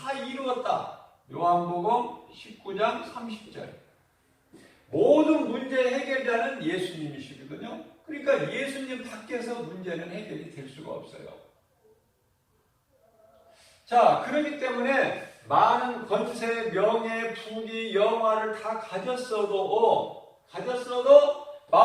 이루었다. 요한복음 19장 30절. 모든 문제 해결자는 예수님이시거든요. 그러니까 예수님 밖에서 문제는 해결이 될 수가 없어요. 자, 그렇기 때문에 많은 권세, 명예, 부귀, 영화를 다 가졌어도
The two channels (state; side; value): identical; both; correlation 1.00